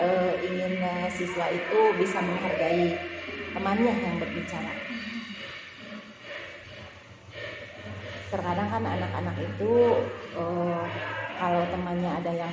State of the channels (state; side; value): identical; both; correlation 1.00